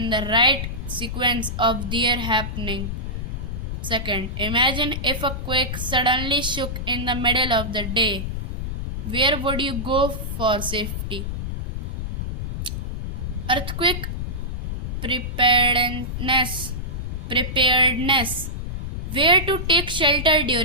the right sequence of their happening. Second, imagine if a quake suddenly shook in the middle of the day. Where would you go for safety? Earthquake preparedness. Where to take shelter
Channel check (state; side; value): noise; left; rumble, 4 dB below the sound